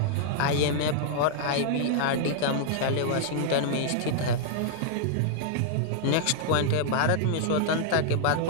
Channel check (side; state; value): both; different; correlation -0.01